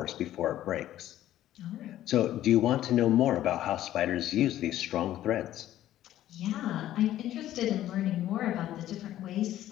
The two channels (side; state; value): right; quieter; 13.1 dB